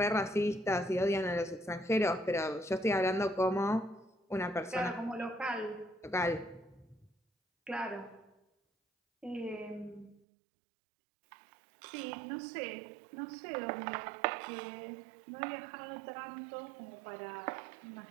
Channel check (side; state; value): left; drops out; at 10.2 s